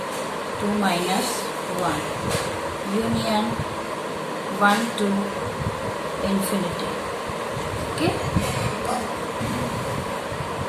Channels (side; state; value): both; identical; correlation 1.00